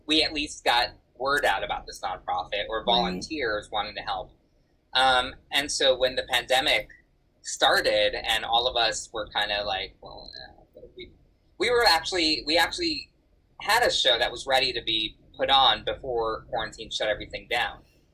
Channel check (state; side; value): identical; both; correlation 1.00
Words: we at least got word out about this nonprofit, or volunteers wanting to help. And so when the pandemic started, and all of us were kind of like, well, we actually had a show that was ready to be put on before quarantine shut everything down.